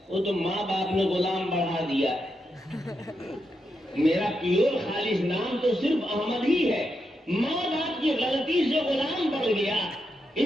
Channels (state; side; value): normal; both; correlation 0.84